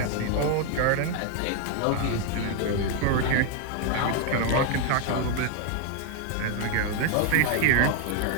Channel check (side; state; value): both; different; correlation 0.00